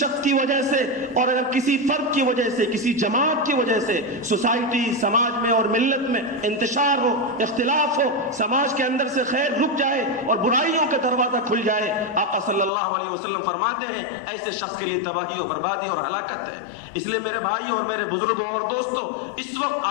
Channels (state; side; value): drops out; right; at 12.7 s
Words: کی وجہ سے اور اگر کسی فرد کی وجہ سے، کسی جماعت کی وجہ سے سوسائٹی، سماج میں اور ملت میں انتشار ہو، اختلاف ہو، سماج کے اندر سے خیر رک جائے اور برائیوں کا دروازہ کھل جائے، آقا صلی اللہ علیہ وسلم فرماتے ہیں ایسے شخص کے لیے تباہی و بربادی اور ہلاکت ہے۔ اس لیے میرے بھائیوں اور میرے بزرگوں اور دوستوں، اس وقت